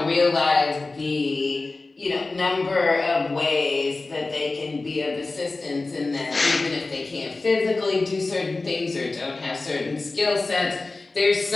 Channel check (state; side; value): quieter; right; 3.4 dB